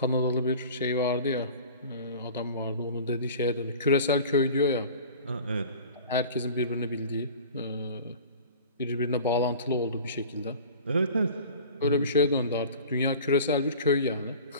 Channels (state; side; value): inverted; both; correlation -0.40